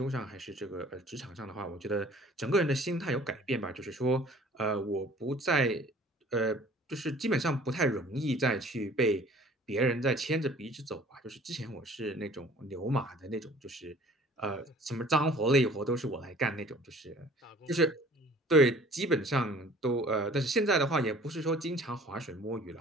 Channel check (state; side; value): normal; both; correlation 0.50